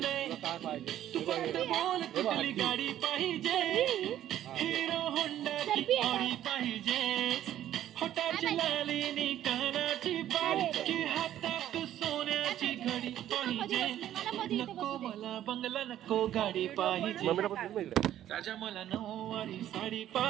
काय पाहिजे तू फक्त बोल कुठली गाडी पाहिजे, हिरो होंडाची ऑडी पाहिजे, होटाची लालीनी कानाची बाळी, की हातात सोन्याची घडी पाहिजे. नको मला बंगला, नको गाडी पाहिजे, राजा मला नऊवारी साडी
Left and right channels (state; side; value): quieter; left; 12.0 dB